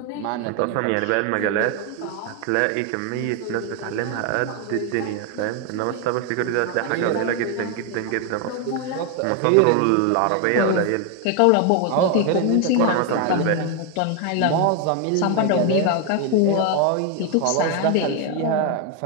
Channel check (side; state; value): both; different; correlation 0.01